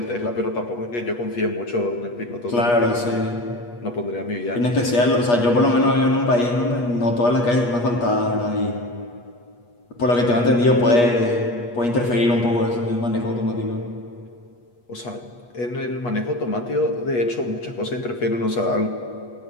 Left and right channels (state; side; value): late; right; 8.3 ms